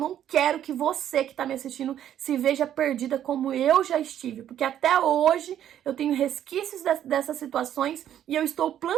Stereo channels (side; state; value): left; quieter; 10.7 dB